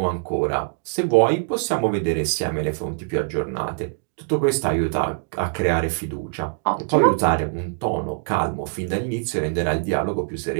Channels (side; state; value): left; silent; digital silence